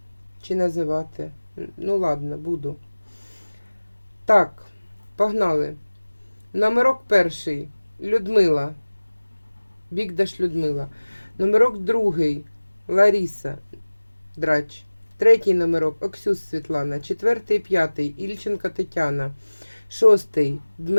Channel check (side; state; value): both; inverted; correlation -1.00